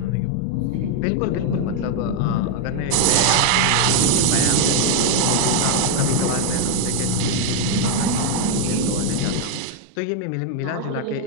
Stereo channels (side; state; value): both; different; correlation 0.00